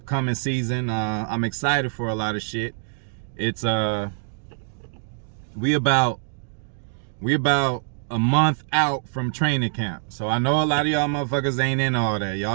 season. I'm excited for a lot of shit. It's we about a month out from training camp. So I know a lot of y'all motherfuckers ain't in all that.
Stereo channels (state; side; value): silent; left; 62 dB below the other